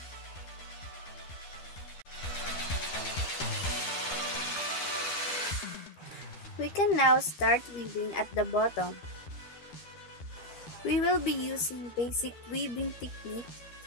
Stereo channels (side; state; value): right; late; 12 ms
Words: We can now start weaving at the bottom. We will be using basic weaving technique